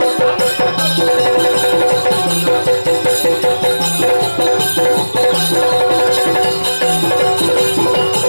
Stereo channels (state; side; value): inverted; both; correlation -1.00